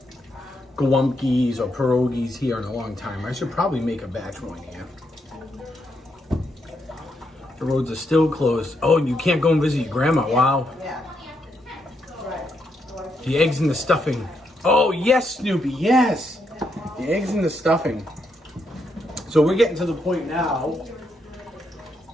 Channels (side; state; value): both; normal; correlation 0.79